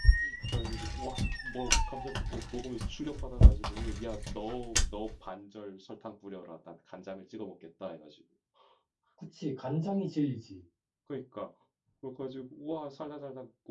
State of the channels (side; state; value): both; identical; correlation 1.00